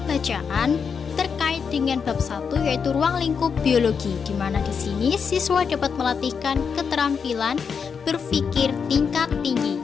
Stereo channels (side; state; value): right; quieter; 6.2 dB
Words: bacaan terkait dengan bab 1 yaitu ruang lingkup biologi, di mana di sini siswa dapat melatihkan keterampilan berpikir tingkat tinggi.